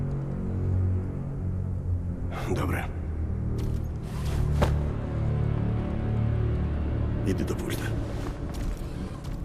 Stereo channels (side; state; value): both; identical; correlation 1.00